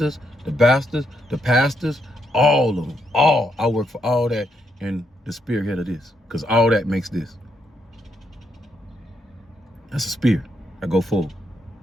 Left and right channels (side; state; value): both; normal; correlation 0.78